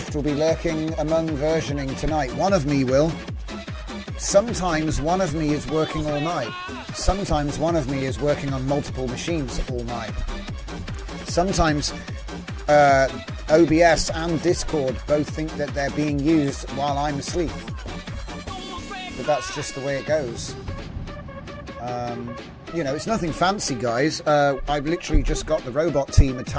will be lurking among versioning tonight. One of me will. Sometimes one of me is working all night. Sometimes one of me is working on multiple machines all night. Sometimes OBS and Discord both think that they're being used while I'm asleep. But that's just the way it goes. You know, it's nothing fancy, guys. I've literally just got the robot team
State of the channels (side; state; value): both; identical; correlation 1.00